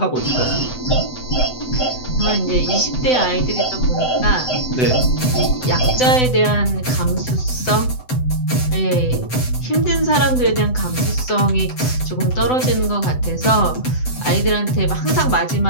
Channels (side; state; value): right; late; 7.9 ms